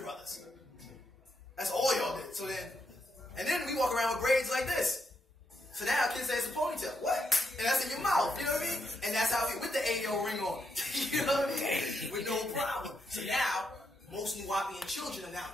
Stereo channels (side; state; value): both; normal; correlation 0.81